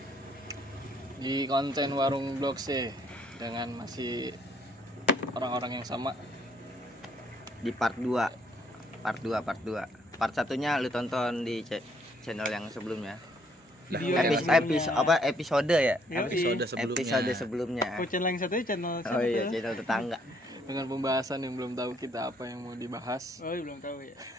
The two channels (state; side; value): normal; both; correlation 0.67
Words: di konten Warung Blok C dengan masih orang-orang yang sama. Di part 2. Part satunya lu tonton di channel yang sebelumnya. Episode ya? Episode sebelumnya. Oh, channel yang satunya channel Oh iya, channel tetangga. Dengan pembahasan yang belum tahu kita apa yang mau dibahas. Oh, belum tahu ya.